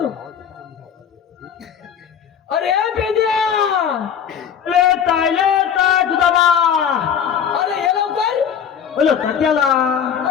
अरे पेद्या ले तायले ताय तुझा बा अरे ये लवकर अलो तात्याला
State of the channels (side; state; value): right; quieter; 8.1 dB